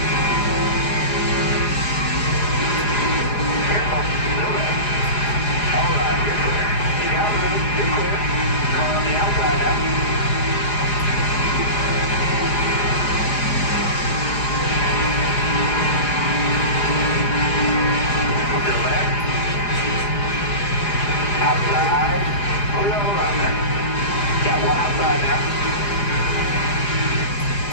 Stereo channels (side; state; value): right; late; 4.9 ms